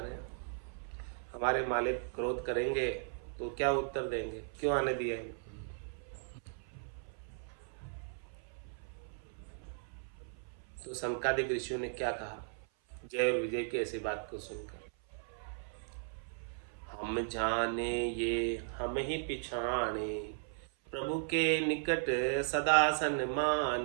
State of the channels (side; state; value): left; silent; 53 dB below the other